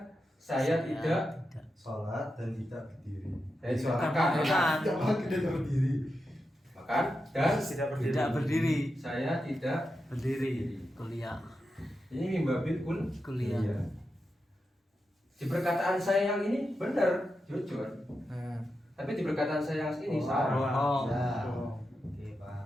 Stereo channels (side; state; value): both; normal; correlation 0.88